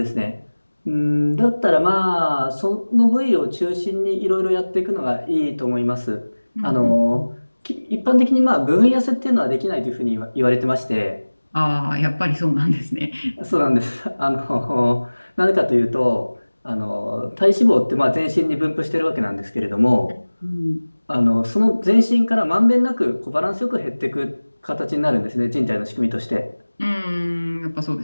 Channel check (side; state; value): both; inverted; correlation -1.00